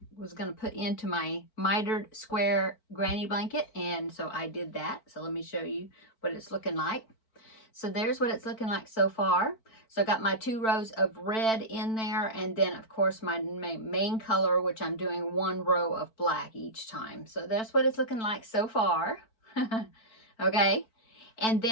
to put into my mitered square granny blanket, and so I did that. So let me show you what it's looking like. So there's what it's looking like so far. So I got my 2 rows of red in there, and then of course my main color, which I'm doing 1 row of black each time. So that's what it's looking like so far. Okay. And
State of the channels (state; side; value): late; right; 4.5 ms